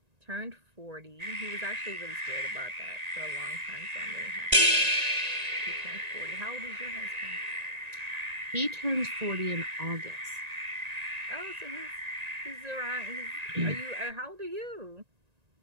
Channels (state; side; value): late; left; 1.9 ms